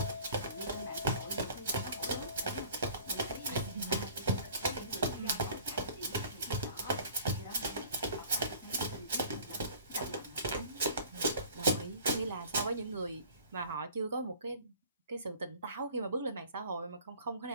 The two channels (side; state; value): both; inverted; correlation -0.49